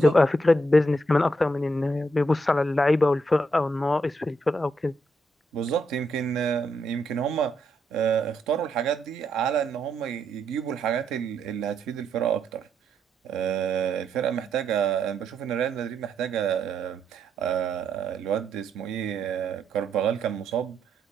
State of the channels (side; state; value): both; normal; correlation 0.78